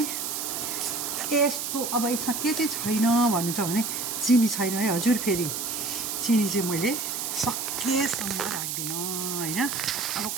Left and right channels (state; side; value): noise; right; hiss, 3 dB below the sound